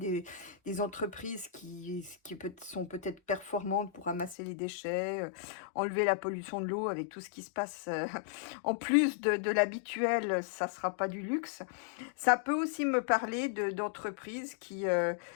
entreprises sont peut-être performantes pour ramasser les déchets, enlever la pollution de l'eau avec tout ce qui se passe. En plus de l'habituel, ça ne sera pas du luxe. Ça peut aussi me parler d'entreprises qui,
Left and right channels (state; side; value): drops out; right; at 4.4 s